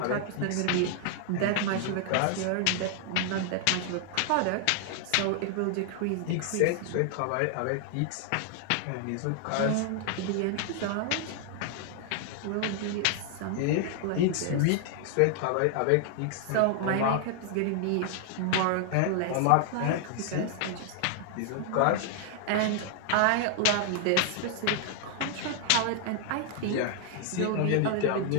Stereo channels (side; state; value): both; different; correlation 0.00